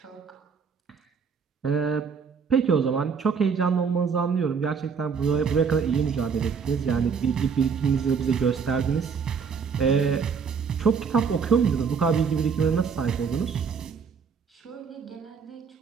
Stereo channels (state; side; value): quieter; left; 6.0 dB